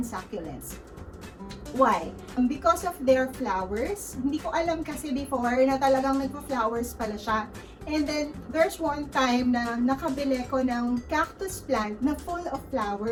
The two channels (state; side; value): identical; both; correlation 1.00